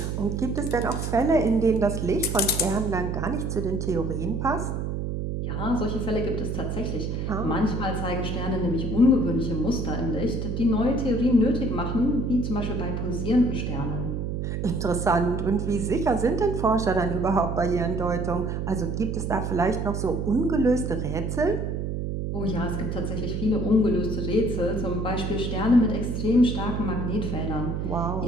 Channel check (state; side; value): noise; right; hum, 2 dB below the sound